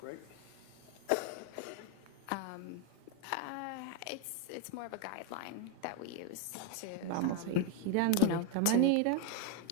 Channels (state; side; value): different; both; correlation 0.02